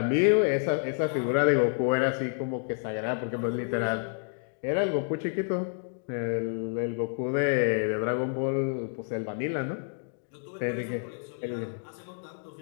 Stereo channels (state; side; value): silent; right; 59 dB below the other